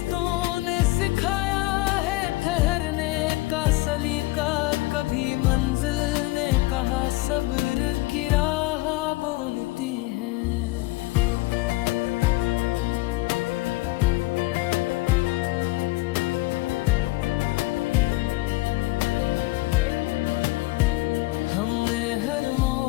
ने सिखाया है ठहरने का सलीका, कभी मंजिल ने कहा सब्र की राह बोलती है। हमने हर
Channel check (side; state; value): right; quieter; 20.3 dB